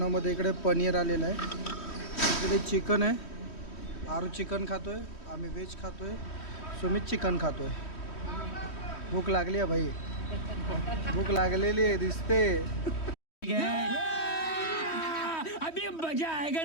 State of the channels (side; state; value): right; late; 3.1 ms